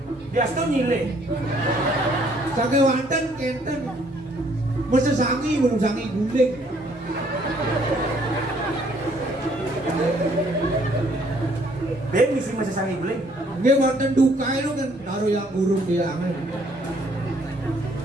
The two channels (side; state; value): both; normal; correlation 0.64